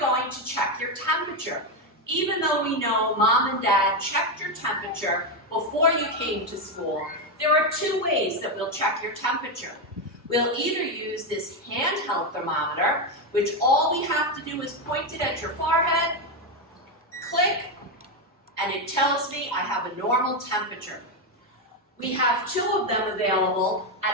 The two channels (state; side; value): normal; both; correlation 0.08